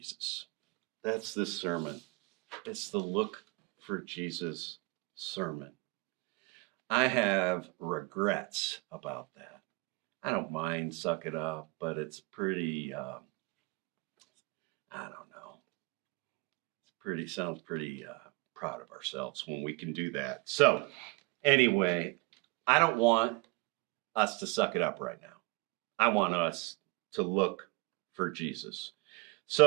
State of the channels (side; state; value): left; quieter; 25.6 dB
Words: That's this sermon. It's the Look for Jesus sermon. I have regrets about that. I don't mind suck it up, but it's pretty, I don't know. Sounds pretty proud of ourselves when we can do that. So anyway, I don't want us to suck it up right now. I want us to look for Jesus.